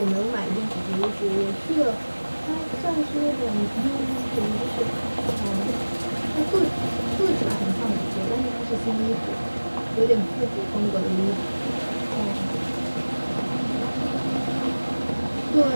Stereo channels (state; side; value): inverted; both; correlation -1.00